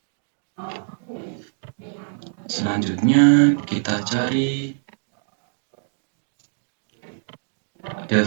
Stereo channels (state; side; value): silent; left; digital silence